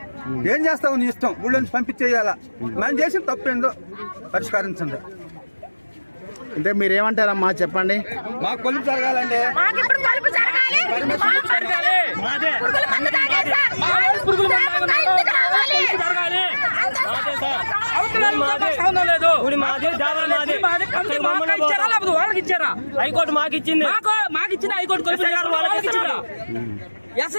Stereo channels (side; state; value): both; inverted; correlation -1.00